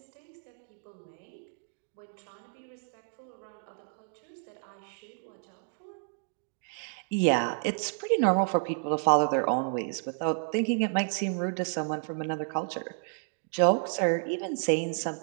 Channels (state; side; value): silent; left; 57 dB below the other